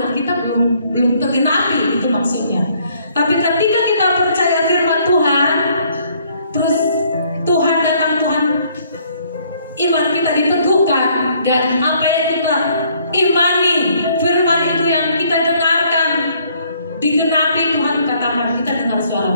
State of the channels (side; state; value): both; inverted; correlation -0.64